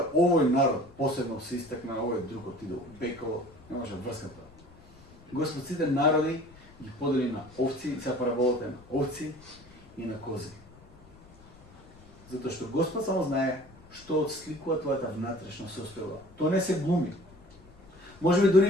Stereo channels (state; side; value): noise; left; rumble, 24 dB below the sound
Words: овој народ посебно се истакна, овој друг отиде во пеколо, не може врската. Господ сите народи ги подели на овци, сега параболата на овци и на кози. Затоа што Господ само знае што отсликува твојата внатрешна состојба. Тоа не се глуми. Можеби